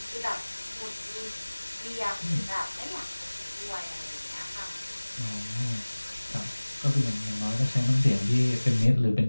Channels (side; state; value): both; inverted; correlation -1.00